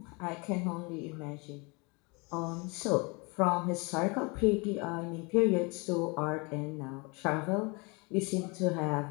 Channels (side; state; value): right; quieter; 29.4 dB